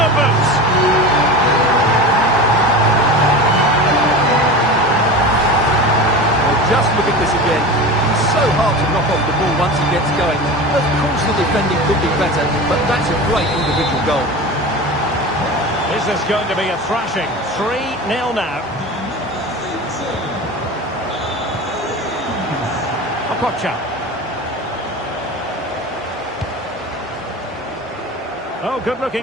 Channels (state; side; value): normal; both; correlation 0.30